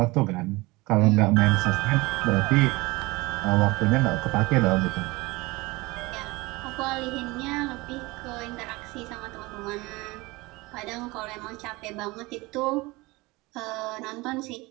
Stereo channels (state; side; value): quieter; left; 22.6 dB